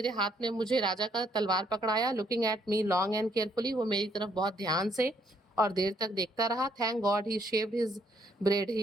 हाथ में मुझे राजा का तलवार पकड़ाया। Looking at me long and carefully, वो मेरी तरफ बहुत ध्यान से और देर तक देखता रहा। Thank God he shaved his bread, he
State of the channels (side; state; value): both; normal; correlation 0.70